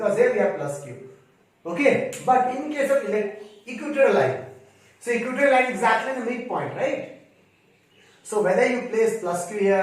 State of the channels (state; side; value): identical; both; correlation 1.00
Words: here we have plus q. Okay, but in case of equatorial line, so equatorial line exactly in the midpoint, right? So whether you place plus q